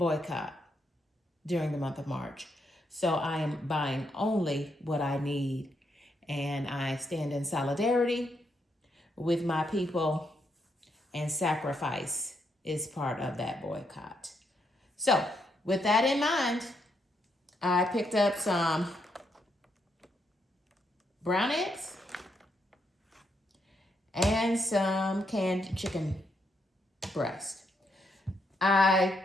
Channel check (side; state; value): both; normal; correlation 0.78